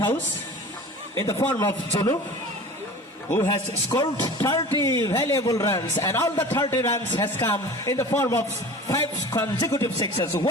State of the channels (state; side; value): normal; both; correlation 0.39